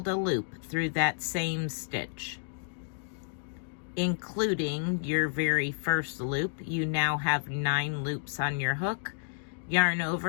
a loop through that same stitch. Including your very first loop, you now have 9 loops on your hook. Yarn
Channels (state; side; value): silent; right; digital silence